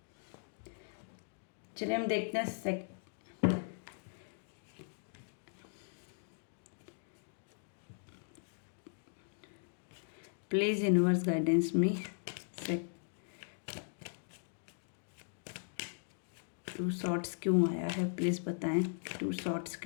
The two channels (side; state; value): right; silent; digital silence